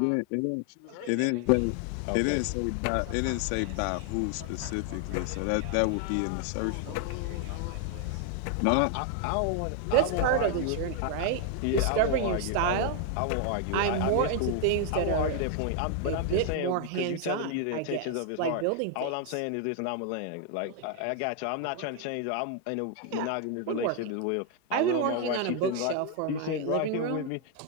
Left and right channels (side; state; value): both; different; correlation 0.00